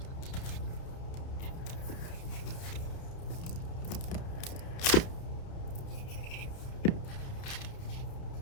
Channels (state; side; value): late; right; 30 ms